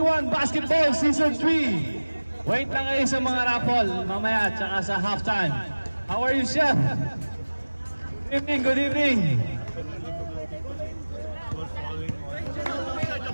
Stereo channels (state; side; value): inverted; both; correlation -1.00